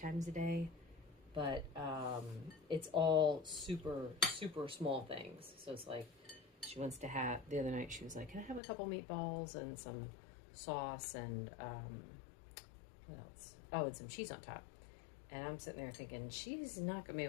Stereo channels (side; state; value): right; drops out; at 8.6 s